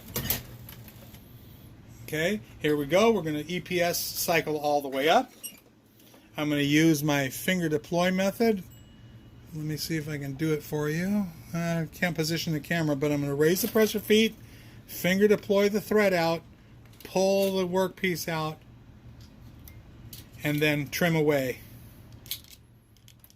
Okay, here we go. We're going to EPS cycle all the way up. I'm going to use my finger deploy method. Let me see if I can do it for you. I can't position the camera, but I'm going to raise the presser feet, finger deploy the thread out, pull the workpiece out, and then trim away.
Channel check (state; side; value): identical; both; correlation 1.00